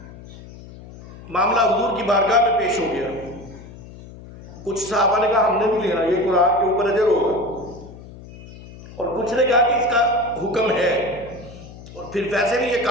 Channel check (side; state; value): left; noise; hum, 17 dB below the sound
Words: मामला हुजूर की बारगाह में पेश हो गया। कुछ सहाबा ने कहा हमने भी लेना, ये कुरान के ऊपर अजर होगा, और कुछ ने कहा कि इसका हुक्म है, और फिर वैसे भी ये